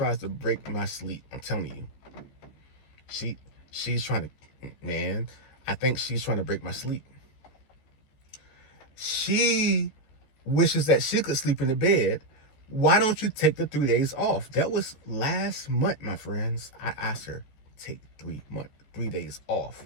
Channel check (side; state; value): right; late; 14 ms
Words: to break my sleep. I'm telling you. She's trying to, man, I think she's trying to break my sleep. She wishes that she could sleep in the bed. Why don't you take the 3 days off? That was last month, my friends. I asked her, take 3 days off.